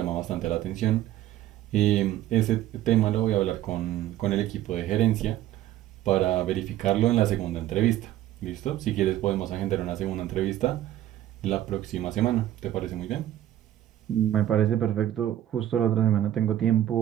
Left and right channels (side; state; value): left; quieter; 13.0 dB